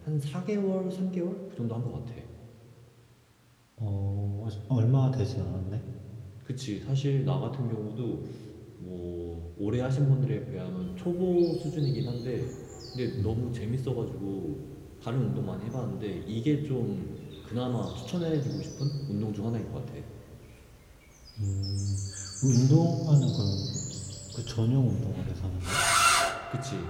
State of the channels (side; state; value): both; identical; correlation 1.00